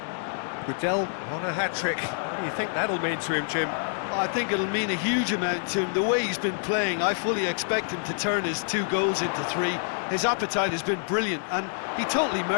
Goodell on a hat-trick. What do you think that'll mean to him, Jim? Well, I think it'll mean a huge amount to him. The way he's been playing, I fully expect him to turn his 2 goals into 3. His appetite has been brilliant, and he totally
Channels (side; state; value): right; silent; digital silence